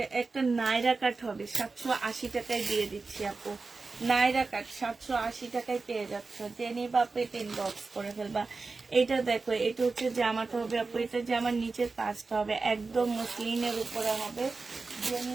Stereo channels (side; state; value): left; quieter; 4.0 dB